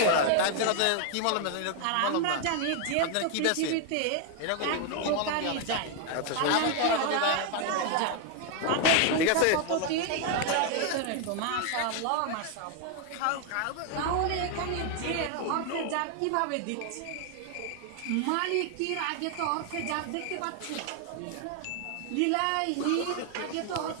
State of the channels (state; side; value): different; both; correlation 0.00